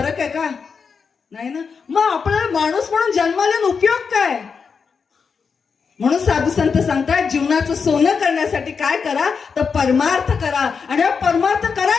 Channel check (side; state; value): right; quieter; 5.7 dB